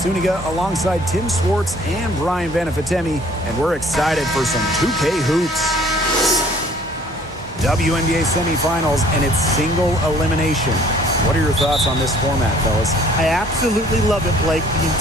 alongside Tim Swartz and Brian Vanafitemi, and we're excited for some 2K hoops. WNBA semifinals and its single elimination. What are your thoughts on this format, fellas? I absolutely love it, Blake. The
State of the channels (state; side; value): normal; both; correlation 0.56